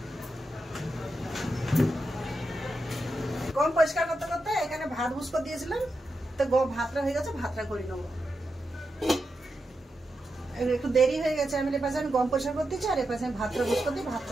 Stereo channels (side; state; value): both; normal; correlation 0.87